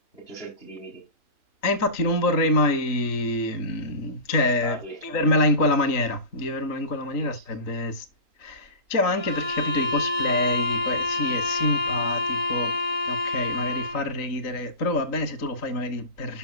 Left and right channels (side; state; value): right; late; 3.8 ms